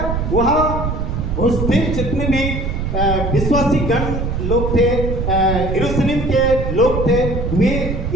वहाँ उस दिन जितने भी विश्वासी गण लोग थे, यरूशलेम के लोग थे, वे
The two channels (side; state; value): right; noise; rumble, 2 dB below the sound